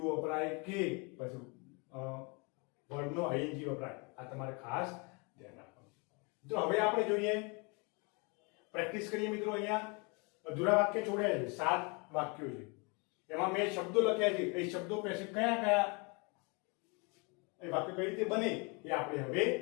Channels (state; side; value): quieter; right; 31.2 dB